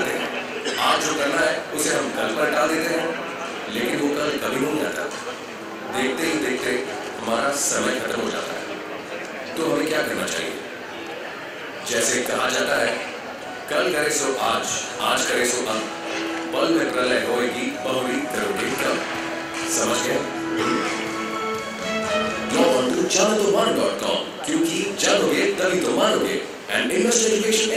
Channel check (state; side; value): identical; both; correlation 1.00